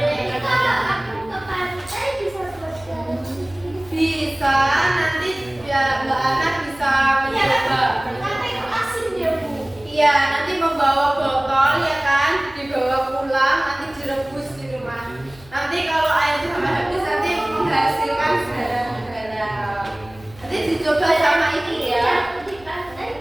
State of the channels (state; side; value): noise; left; hum, 23 dB below the sound